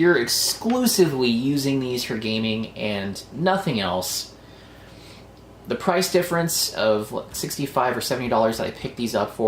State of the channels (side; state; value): both; identical; correlation 1.00